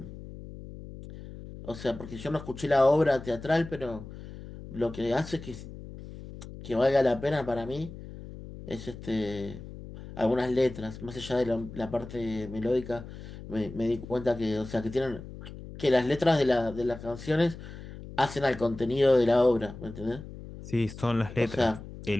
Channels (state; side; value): noise; left; hum, 13 dB below the sound